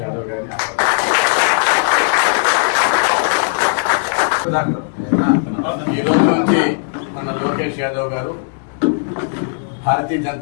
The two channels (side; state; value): right; silent; digital silence